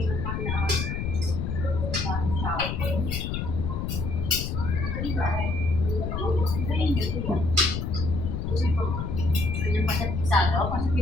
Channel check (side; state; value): left; noise; rumble, 2 dB below the sound